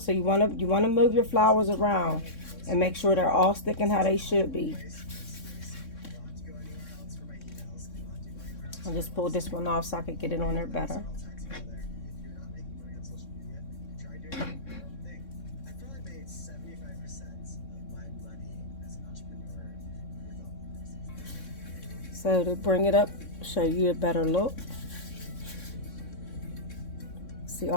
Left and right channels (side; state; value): right; late; 3.6 ms